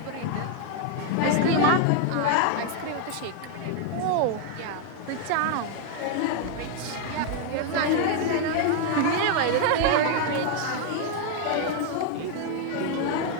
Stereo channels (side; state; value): both; different; correlation 0.00